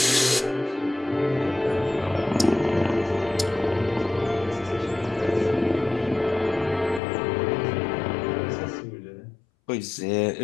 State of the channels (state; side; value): drops out; right; at 7.0 s